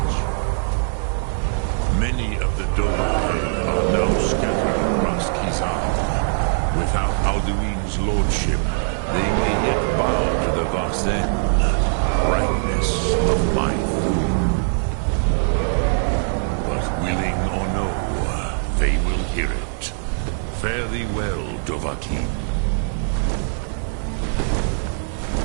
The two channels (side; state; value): left; silent; digital silence